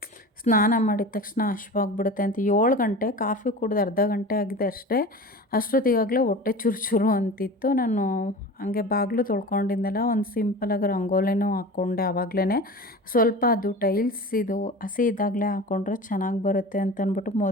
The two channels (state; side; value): normal; both; correlation 0.34